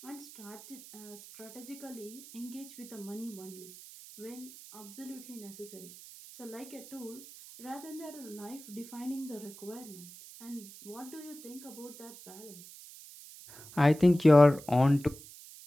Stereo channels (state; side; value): noise; right; hiss, 17 dB below the sound